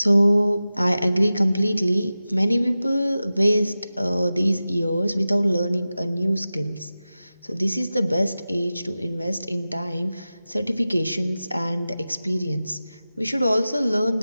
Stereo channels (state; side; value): inverted; both; correlation -0.95